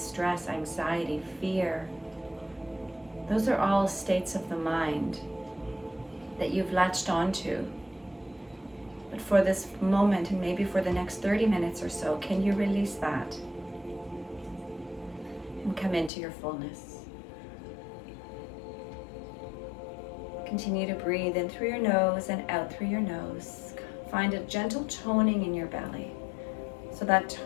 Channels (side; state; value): right; drops out; at 16.1 s